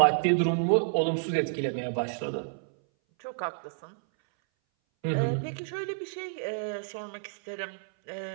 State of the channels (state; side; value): silent; left; 58 dB below the other